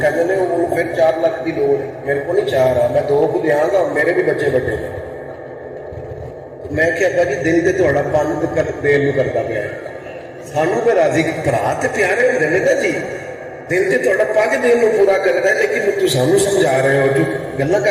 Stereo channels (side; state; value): both; identical; correlation 1.00